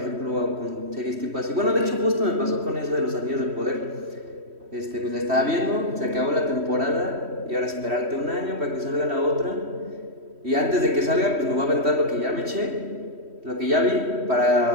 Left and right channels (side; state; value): left; late; 3.1 ms